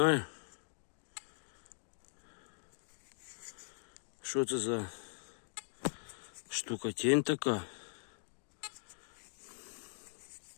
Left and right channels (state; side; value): silent; right; digital silence